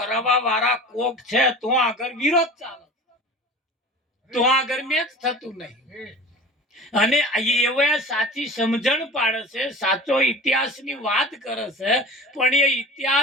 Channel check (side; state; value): both; normal; correlation 0.38